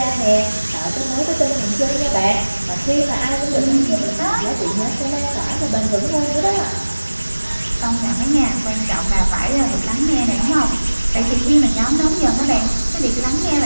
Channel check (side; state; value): both; inverted; correlation -1.00